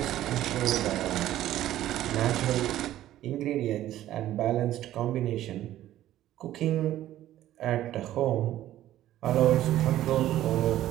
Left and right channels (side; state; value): left; quieter; 13.4 dB